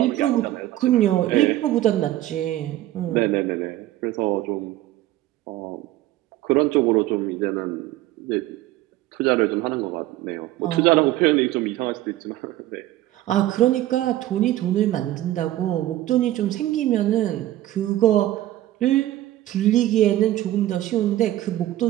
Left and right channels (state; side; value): quieter; left; 14.7 dB